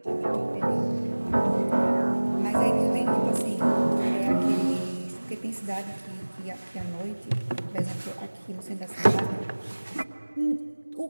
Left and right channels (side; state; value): both; inverted; correlation -1.00